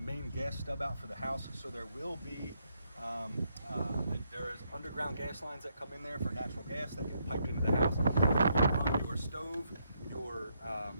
gas stub out for the house. So there will be there is underground gas lines that come in there for natural gas that get piped into the house. Run your stove,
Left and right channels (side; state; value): both; inverted; correlation -0.76